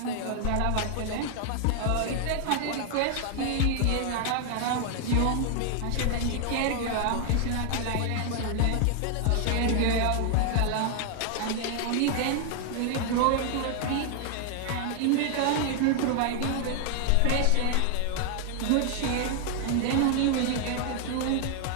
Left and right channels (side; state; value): both; different; correlation 0.00